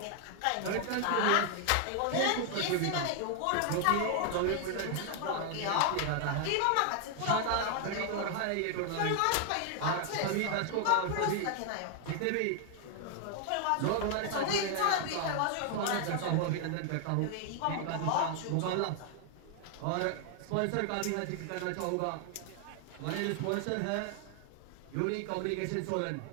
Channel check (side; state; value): both; different; correlation 0.00